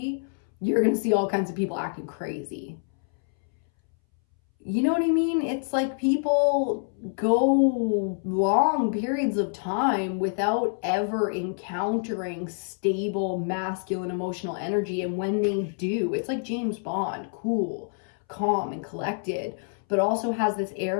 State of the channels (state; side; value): silent; right; 60 dB below the other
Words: you're going to see all kinds of people acting crazy. You know what I mean? It's like people go long periods of time without ever encountering stable masculine emotional energy. And when they do, it's like James Bond, cool, calm, and collected, but also has this